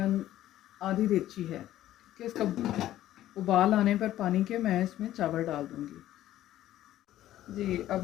आधी देगची है, ठीक है। इसका उबाल आने पर पानी के मैं इसमें चावल डाल दूँगी। जी,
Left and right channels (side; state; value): right; quieter; 13.5 dB